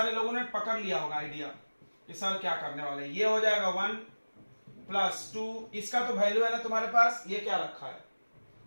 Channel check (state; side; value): inverted; both; correlation -1.00